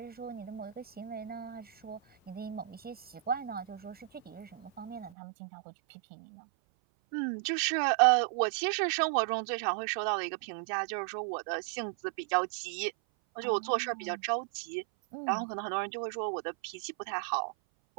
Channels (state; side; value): drops out; left; at 5.1 s